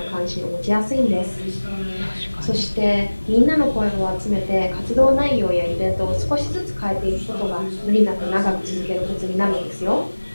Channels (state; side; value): inverted; both; correlation -1.00